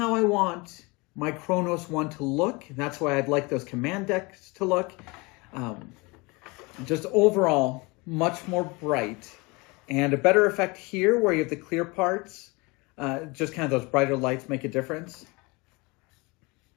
I want my Kronos One to look. That's why I'd like those command decks to look. Just overall, much more bright. And a better effect here where you have the clear parts. Just kind of those brighter lights make a difference.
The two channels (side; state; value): right; quieter; 26.4 dB